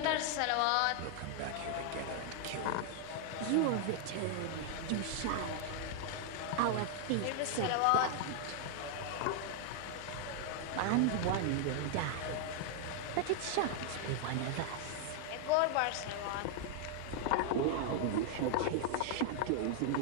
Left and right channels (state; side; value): different; both; correlation 0.00